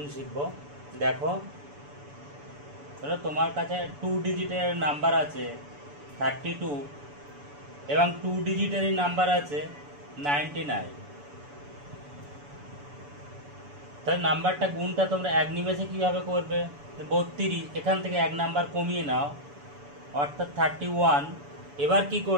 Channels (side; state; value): left; late; 7.0 ms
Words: শিখব। দেখো, ধরো তোমার কাছে 2 ডিজিটের নাম্বার আছে 32 এবং 2 ডিজিটেরই নাম্বার আছে 99। তাহলে নাম্বারটা গুণটা তোমরা এক নিমেষে কীভাবে করবে? 32, এখান থেকে এক নাম্বার কমিয়ে নাও, অর্থাৎ 31। এবার কি